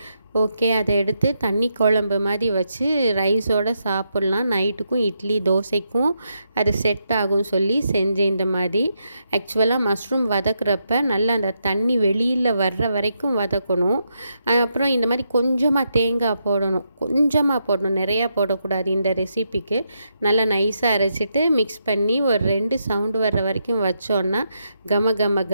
ஓகே, அதை எடுத்து தண்ணி குழம்பு மாதிரி வச்சு ரைஸோடு சாப்பிட்லாம். நைட்டுக்கும் இட்லி தோசைக்கும் அது செட் ஆகும் சொல்லி செஞ்சேன். இந்த மாதிரி ஆக்சுவலாக மஷ்ரூம் வதக்குறப்ப நல்லா அந்த தண்ணி வெளியில் வர்ற வரைக்கும் வதக்கணும். அப்புறம் இந்த மாதிரி கொஞ்சமாக தேங்காய் போடணும், நிறையா போடக்கூடாது. இந்த ரெசிபிக்கு நல்லா நைஸாக அரைச்சிட்டு மிக்ஸ் பண்ணி ஒரு 2 சவுண்டு வர்ற வரைக்கும் வச்சோன்னா கம கம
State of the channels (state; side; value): inverted; both; correlation -0.81